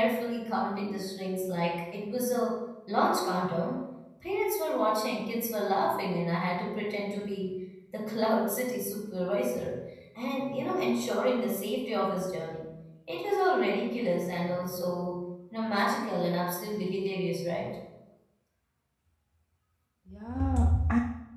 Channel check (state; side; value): identical; both; correlation 1.00